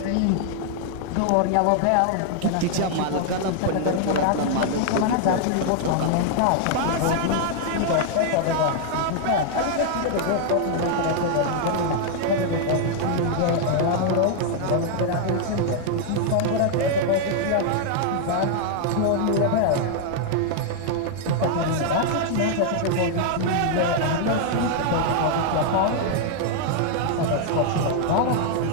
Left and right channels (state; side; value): different; both; correlation 0.00